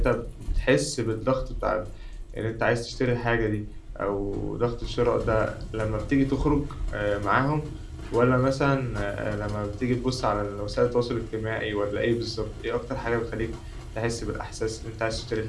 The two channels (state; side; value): identical; both; correlation 1.00